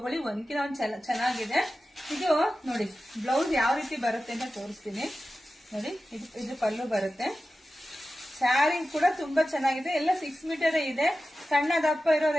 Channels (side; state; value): both; normal; correlation 0.94